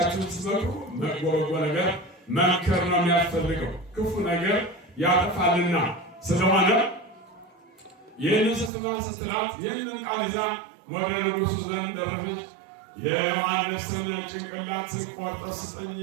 ስትመክሩ መጥፎ ነገር መምከር ነው የሚያስፈልገው፣ ክፉ ነገር ያጠፋልና። ስለሆነ ይህንን ስትላት ይህንን ቃል ይዛ ወደ ንጉሡ ዘንድ ደረሰች። የዮሐንስን ጭንቅላት ቆርጠህ ስጠኝ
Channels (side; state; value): left; drops out; at 8.7 s